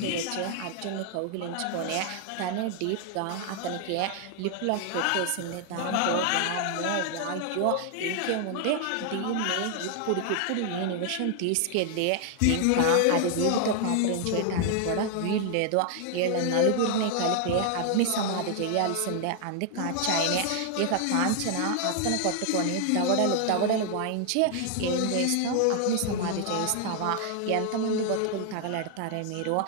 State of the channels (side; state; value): both; different; correlation 0.00